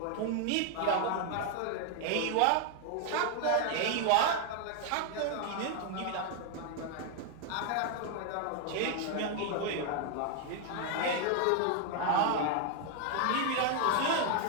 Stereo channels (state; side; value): different; both; correlation 0.00